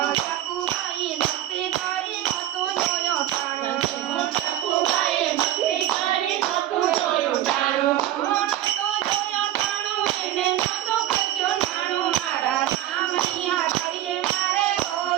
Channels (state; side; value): quieter; left; 13.2 dB